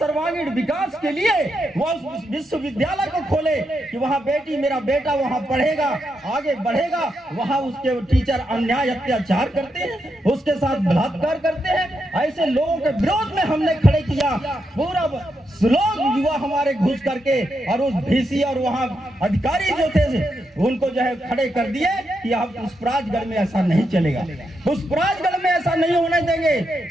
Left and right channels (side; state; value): both; normal; correlation 0.83